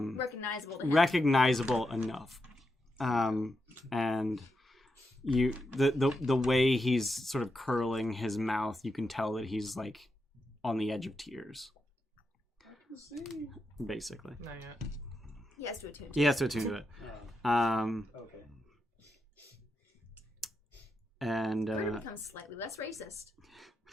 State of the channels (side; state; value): both; normal; correlation 0.85